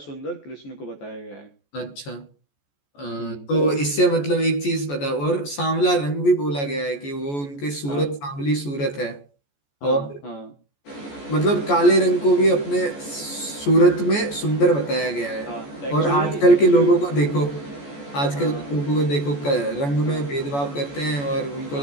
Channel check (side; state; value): right; late; 14 ms